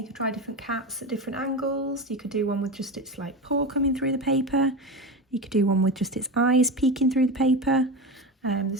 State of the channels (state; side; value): normal; both; correlation 0.22